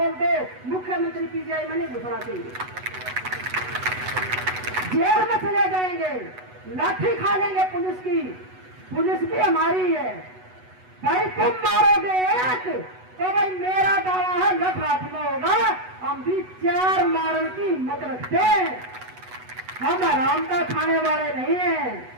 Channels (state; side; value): late; left; 8.1 ms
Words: दो, मुख्यमंत्री पीजीआई में नहीं घुसना चाहिए। जेल में चले जाएंगे, लाठी खा लेंगे पुलिस की। पुलिस भी हमारी है भाई। तुम मारोगे एक तो भाई मेरा दावा है लख हाथ में होगा। हम भी 4 मारने की हिम्मत रखते हैं। हम आराम का खाने वाले नहीं हैं।